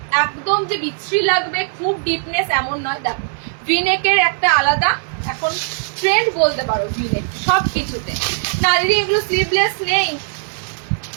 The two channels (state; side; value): silent; left; 67 dB below the other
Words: একদম যে বিচ্ছিরি লাগবে খুব ডিপনেস এমন নয়। দেখো ভি নেকের একটা আলাদা এখন ট্রেন্ড বলতে পারো ভি নেক সব কিছুতে। না দিদি এগুলো স্লিভলেস নেই,